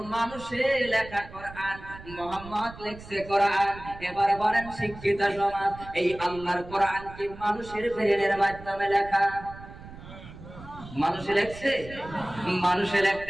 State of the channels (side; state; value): right; noise; rumble, 16 dB below the sound